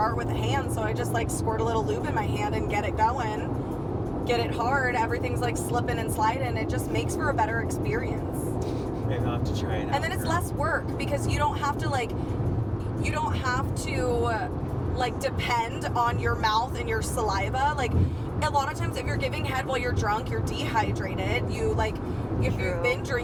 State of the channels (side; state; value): both; identical; correlation 1.00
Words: with a hand, so I just like squirt a little lube in my hand and get it going, get it hard. Everything's like slipping and sliding. It just makes for a better experience. Maybe I'll have to try it out. And then it's less work because you don't have to depend on your mouth and your saliva. Like a lot of times if you're giving head while you're drunk, you're dehydrated. If you've been